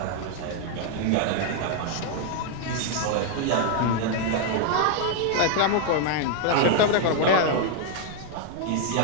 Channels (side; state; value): both; different; correlation 0.00